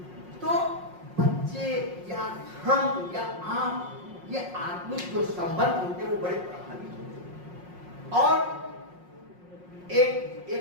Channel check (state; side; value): late; left; 5.5 ms